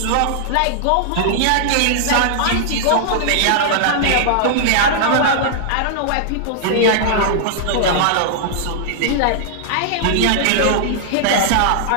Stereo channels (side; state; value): both; different; correlation -0.01